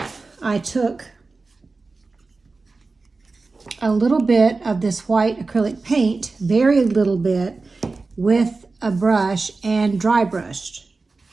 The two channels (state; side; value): quieter; left; 3.8 dB